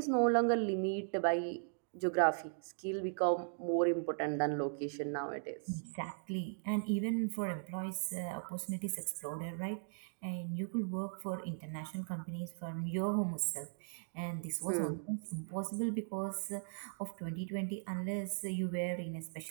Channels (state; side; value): silent; left; digital silence